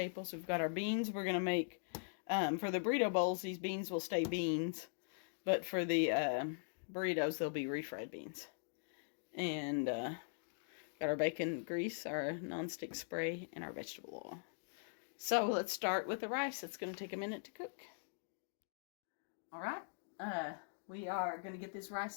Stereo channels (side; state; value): right; silent; digital silence